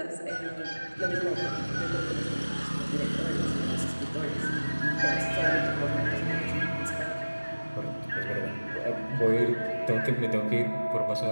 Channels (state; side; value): inverted; both; correlation -1.00